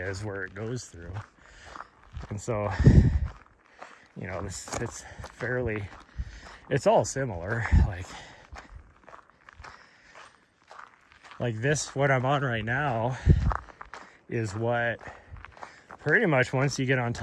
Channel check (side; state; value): both; identical; correlation 1.00